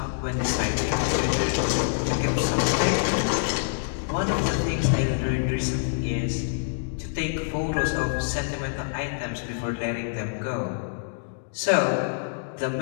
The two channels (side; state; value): right; silent; digital silence